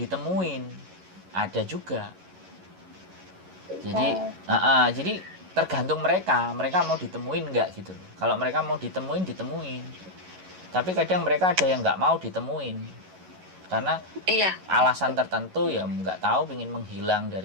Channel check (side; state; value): left; late; 11 ms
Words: ada juga. Jadi, jadi tergantung mereka mau ditemuin nggak gitu loh. Kalau mereka mau ditemuin. Tapi kadang mereka ada yang nggak mau ditemuin. Karena alasan tertentu ya nggak tahu, pingin menghilang